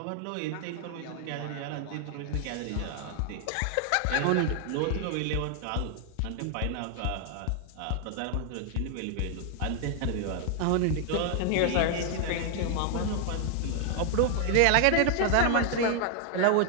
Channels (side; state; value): both; different; correlation 0.00